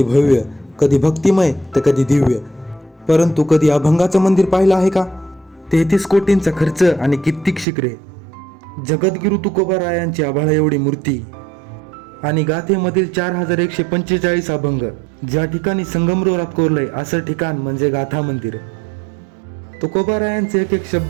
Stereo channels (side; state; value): left; drops out; at 7.7 s